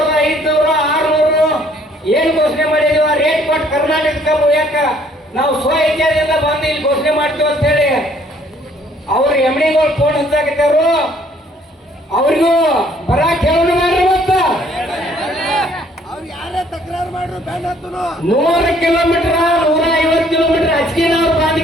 600 ಏನ್ ಘೋಷಣೆ ಮಾಡಿದೀವ ರೇಟ್ ಕೊಟ್ಟು ಕರ್ನಾಟಕ ಕಬ್ಬು ಯಾಕ ನಾವು ಸ್ವ ಇಚ್ಛೆಯಿಂದ ಬಂದು ಇಲ್ಲಿ ಘೋಷಣೆ ಮಾಡ್ತೀವಿ ಅಂತ ಹೇಳಿ ಅವ್ರು ಎಮ್ಣಿಗಳು ಫೋನ್ ಹಚ್ಚಾಕತ್ತಾರು. ಅವ್ರಿಗೂ ಬರಾಕ್ ಹೇಳೋಣ ಮಾಡ್ರಿ. ಮತ್ತ 100 ಕಿಲೋಮೀಟರ್ 150 ಕಿಲೋಮೀಟರ್ ಅಚ್ಕಿನವ್ರ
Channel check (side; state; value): both; normal; correlation 0.61